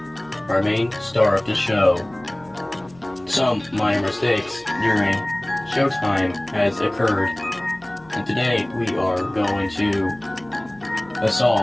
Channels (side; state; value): left; noise; hum, 27 dB below the sound